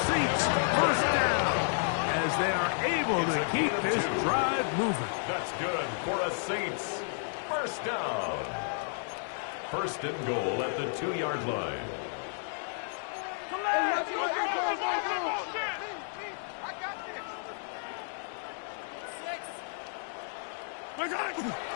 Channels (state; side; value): silent; right; digital silence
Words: Saints first down as they are able to keep this drive moving. That's good for a Saints. First down. First and goal at the 2-yard line.